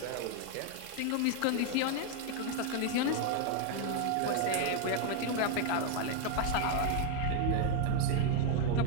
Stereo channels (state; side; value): different; both; correlation 0.01